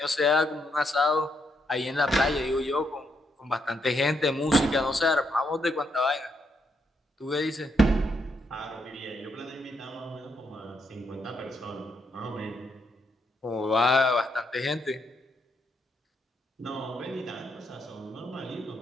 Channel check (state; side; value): normal; both; correlation 0.78